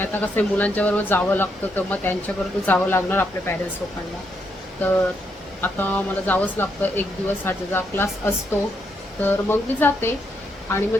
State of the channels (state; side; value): normal; both; correlation 0.78